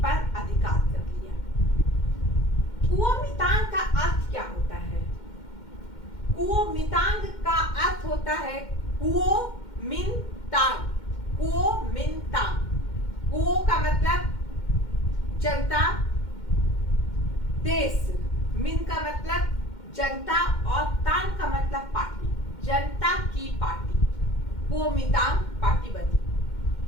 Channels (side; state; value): right; late; 2.1 ms